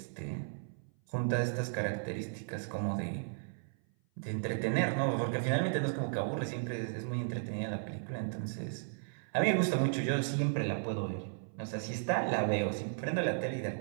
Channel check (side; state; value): left; silent; 54 dB below the other